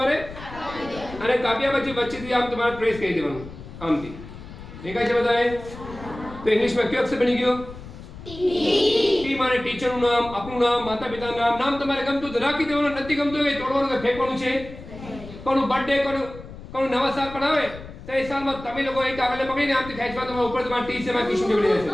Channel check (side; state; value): left; noise; rumble, 14 dB below the sound